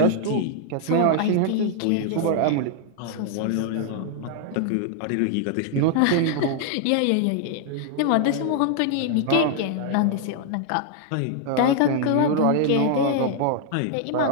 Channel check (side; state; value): both; different; correlation 0.00